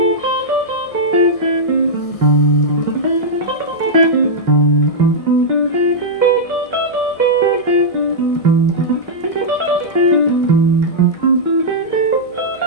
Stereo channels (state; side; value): late; right; 1.6 ms